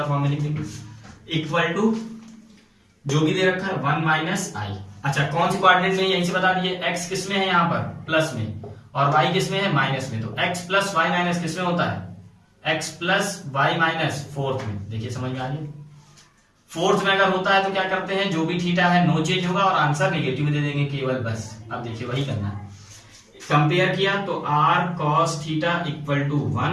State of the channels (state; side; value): identical; both; correlation 1.00